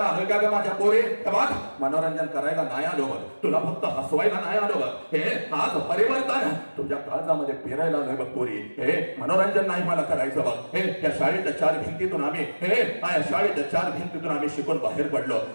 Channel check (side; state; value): both; inverted; correlation -1.00